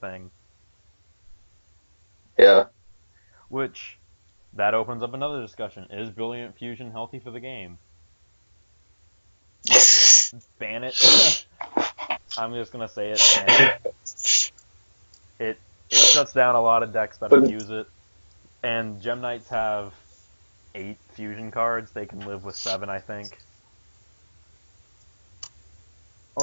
Yeah. which that opens up another discussion. Is Brilliant Fusion healthy for the game? Ban it. I'm just gonna say it. Ban it. It it shuts down a lot of decks that But abuse it. And Gem Knights have 8 fusion cards. They can live with 7, I think,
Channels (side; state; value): both; inverted; correlation -1.00